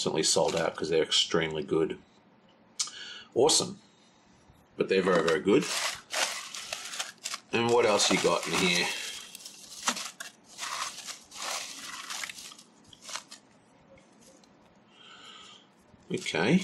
sold out because they're extremely good. Awesome. But they're very, very good. And what else you got in here?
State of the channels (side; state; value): both; identical; correlation 1.00